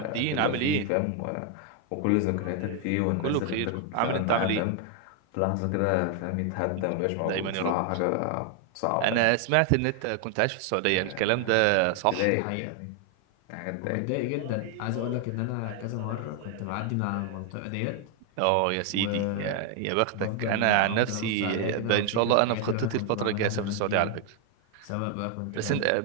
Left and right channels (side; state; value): both; different; correlation 0.00